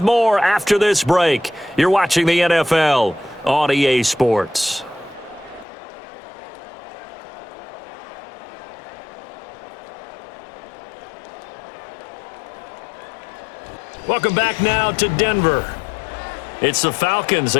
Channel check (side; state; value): right; drops out; at 5.7 s